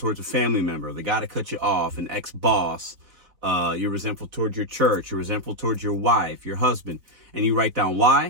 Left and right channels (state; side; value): late; left; 3.9 ms